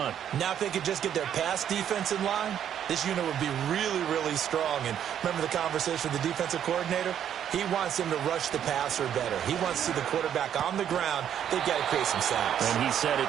Now if they could just get their pass defense in line, this unit would be really, really strong. And remember the conversation with the defensive coordinator? He wants them to rush the passer better. He wants to see the quarterback on the ground. They've got to create some sacks. And he said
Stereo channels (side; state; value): left; quieter; 9.6 dB